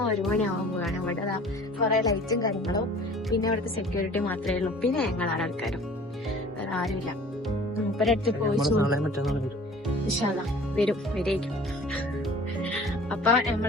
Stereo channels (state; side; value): normal; both; correlation 0.47